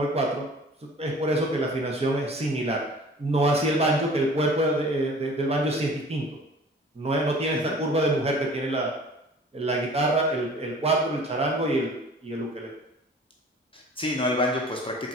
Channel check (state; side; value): normal; both; correlation 0.47